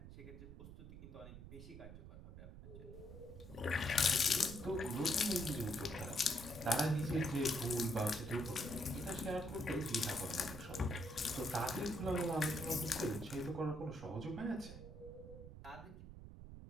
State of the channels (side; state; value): right; noise; rumble, 13 dB below the sound